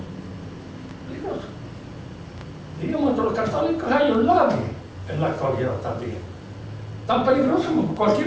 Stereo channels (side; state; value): both; identical; correlation 1.00